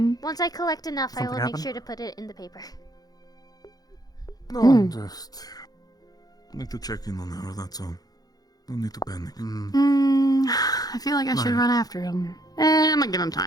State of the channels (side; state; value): right; late; 0.19 ms